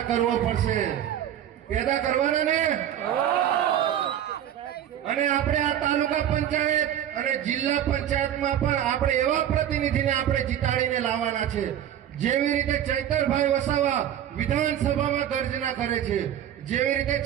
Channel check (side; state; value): left; quieter; 10.6 dB